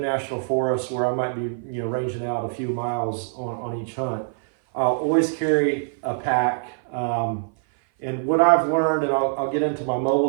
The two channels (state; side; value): silent; left; 56 dB below the other